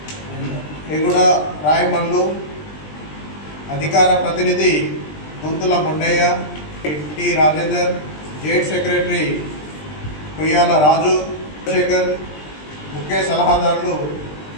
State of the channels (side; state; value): right; late; 20 ms